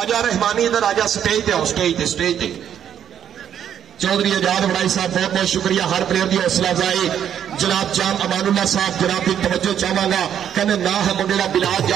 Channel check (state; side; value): quieter; left; 9.3 dB